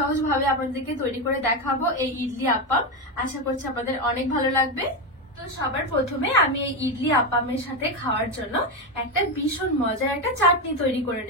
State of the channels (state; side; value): normal; both; correlation 0.11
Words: আপনাদেরকে তৈরি করে দেখাবো এই ইডলি আপ্পাম। আশা করছি আপনাদের অনেক ভালো লাগবে। তো সবার প্রথমে আমি এই ইডলি আপ্পামের সাথে খাওয়ার জন্য একটা ভীষণ মজার একটা চাটনি তৈরি করে